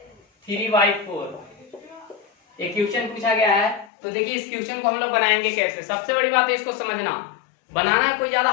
3/4 ये क्वेश्चन पूछा गया है। तो देखिए इस क्वेश्चन को हम लोग बनाएंगे कैसे। सबसे बड़ी बात है इसको समझना। बनाना कोई ज्यादा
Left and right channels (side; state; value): right; drops out; at 3.9 s